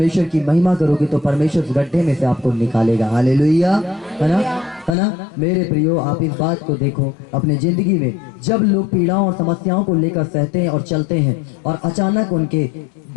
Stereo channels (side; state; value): right; drops out; at 5.0 s